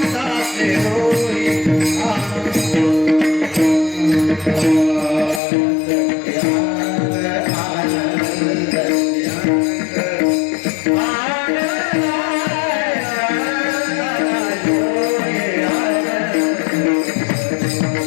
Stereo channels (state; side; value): drops out; right; at 5.4 s